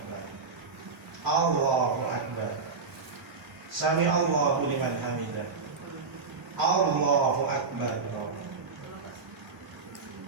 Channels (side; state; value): left; quieter; 4.6 dB